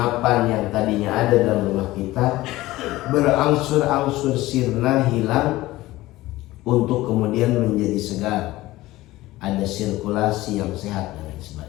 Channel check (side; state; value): right; quieter; 17.7 dB